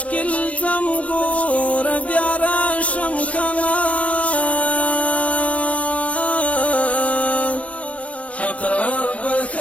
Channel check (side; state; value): right; late; 0.065 ms